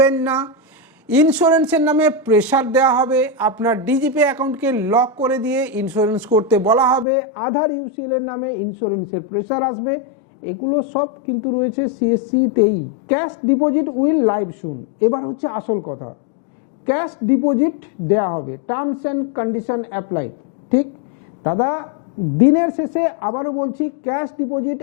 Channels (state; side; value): drops out; right; at 7.1 s